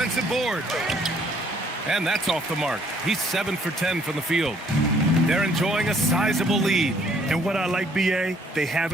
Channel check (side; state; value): both; normal; correlation 0.63